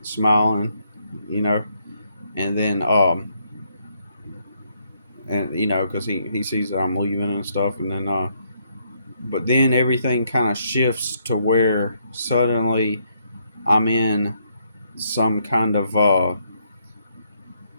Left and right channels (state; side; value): inverted; both; correlation -0.73